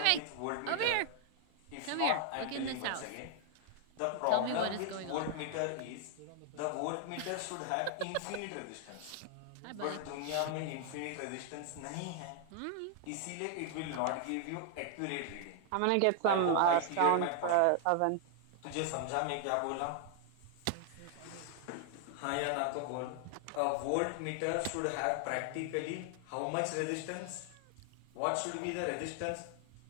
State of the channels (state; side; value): different; both; correlation 0.00